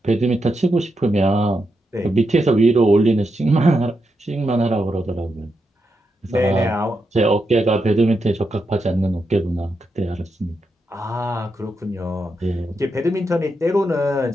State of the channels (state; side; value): normal; both; correlation 0.85